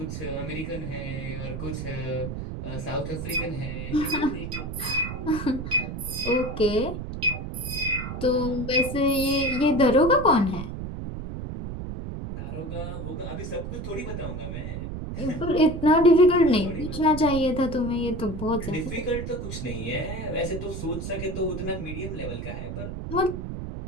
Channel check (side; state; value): right; noise; rumble, 6 dB below the sound